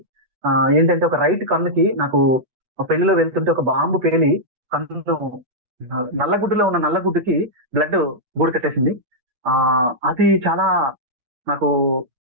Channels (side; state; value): left; late; 8.3 ms